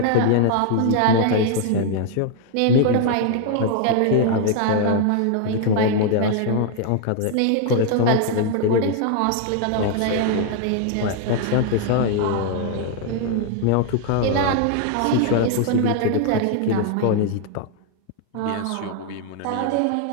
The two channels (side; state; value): both; different; correlation 0.00